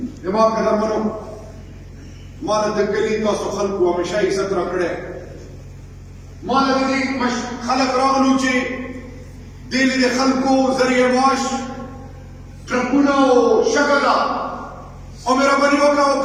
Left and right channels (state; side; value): identical; both; correlation 1.00